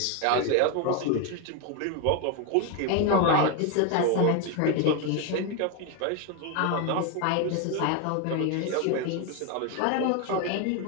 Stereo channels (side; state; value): both; different; correlation 0.01